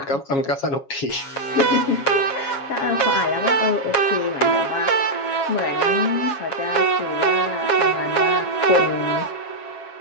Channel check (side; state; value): right; late; 7.3 ms